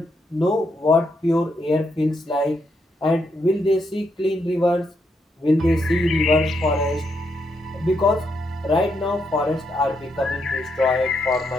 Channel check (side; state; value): both; normal; correlation 0.79